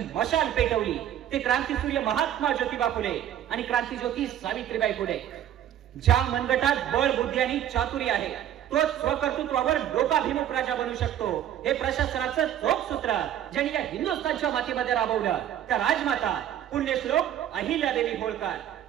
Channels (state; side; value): quieter; left; 11.0 dB